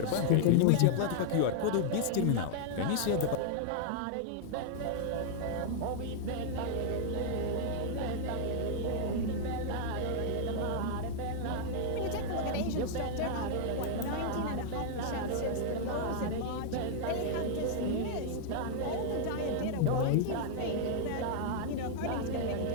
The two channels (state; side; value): different; both; correlation -0.01